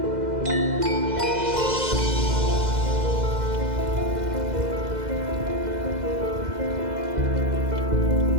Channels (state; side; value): late; left; 2.0 ms